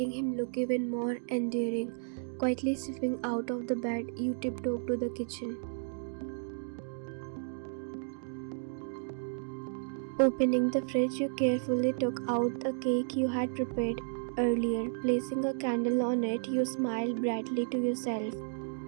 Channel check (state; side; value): silent; left; digital silence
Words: him look even more endearing. Quietly slipping out of the bed, you tiptoed to the kitchen. Opening the fridge, you carefully took out a cake you had prepared earlier. Placing a candle on it, you smiled brightly to yourself.